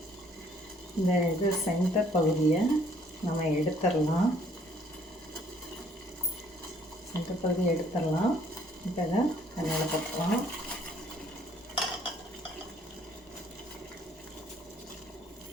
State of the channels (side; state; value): both; normal; correlation 0.62